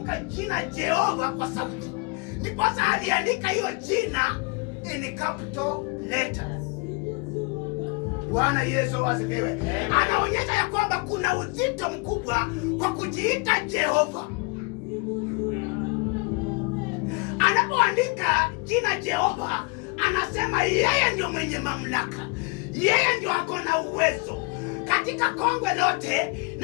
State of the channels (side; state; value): right; quieter; 31.2 dB